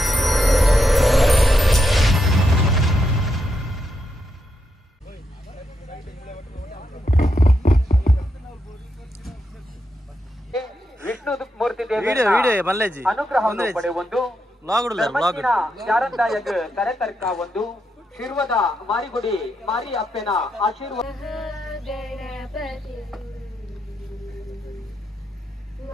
Vishnu ಮೂರ್ತಿ ಅನುಗ್ರಹ ಪಡೆಯುವುದು ಶಾರಂದಾಯಗ ಕರೆತರ್ಕ ಒಂದು ಶಿರ್ವದ ಮಾರಿಗುಡಿ ಮಾರಿ ಅಪ್ಪನ ಆಶೀರ್ವಾದ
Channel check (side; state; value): both; normal; correlation 0.83